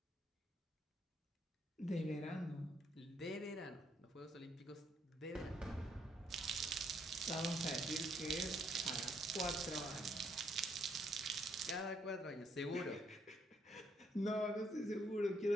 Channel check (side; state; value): both; normal; correlation 0.71